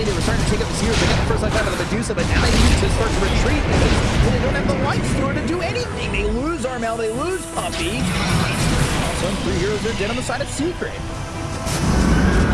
They were starting to take up the Seers. They got the first life out of the Medusa, but now they need to start to retreat because they don't have the light store to do anything. They lose Armel. They lose Puppy. Also, 3 heroes are dead on the side of Secret.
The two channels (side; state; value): both; identical; correlation 1.00